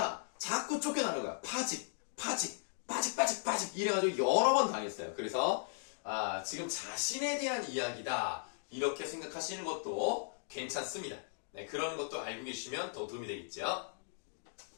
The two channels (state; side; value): silent; right; digital silence